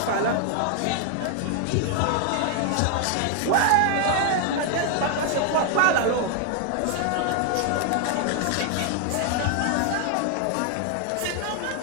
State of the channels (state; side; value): different; both; correlation 0.00